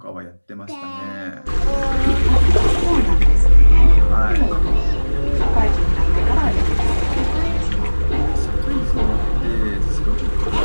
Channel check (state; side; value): inverted; both; correlation -1.00